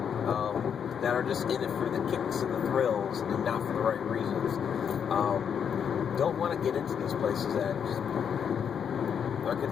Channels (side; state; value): right; quieter; 7.7 dB